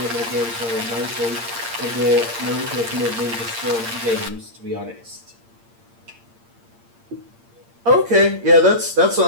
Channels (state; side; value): late; left; 8.7 ms